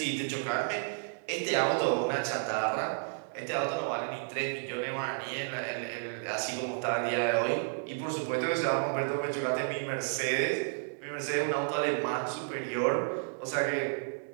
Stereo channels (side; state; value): left; silent; 56 dB below the other